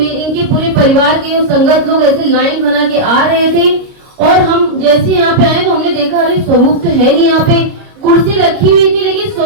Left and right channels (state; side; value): late; left; 29 ms